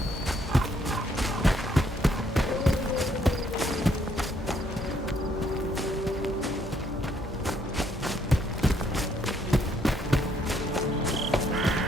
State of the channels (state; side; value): normal; both; correlation 0.70